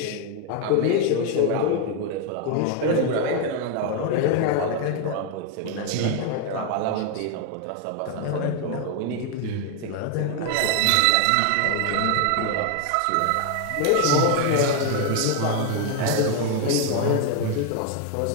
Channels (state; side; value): different; both; correlation 0.01